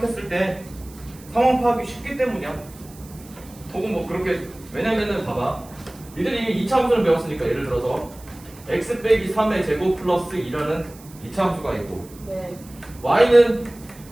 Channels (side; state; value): right; noise; hiss, 22 dB below the sound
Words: 때 상황 파악이 쉽기 때문이야. 혹은 뭐 그렇게, 왜냐면은 봐봐, 니들이 이미 2차 함수를 배웠으니까 예를 들어서 x 빼기 3의 제곱 플러스 2라는 2차 함수가 있고 네. y는